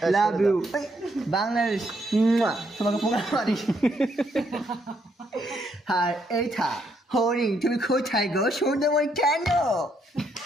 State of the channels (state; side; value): normal; both; correlation 0.74